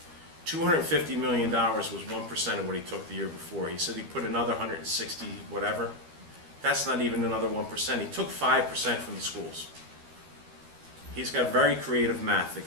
$250 million was 1% of what he took the year before. He said he put another 160 whatever. That's not even another 1%. He took 5% from the schools. He's got very creative math, the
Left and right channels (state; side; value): late; left; 13 ms